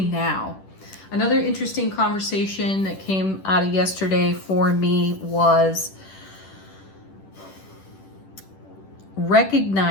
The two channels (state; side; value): late; right; 10 ms